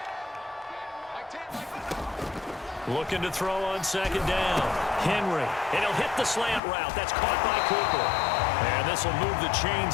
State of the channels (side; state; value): right; drops out; at 6.6 s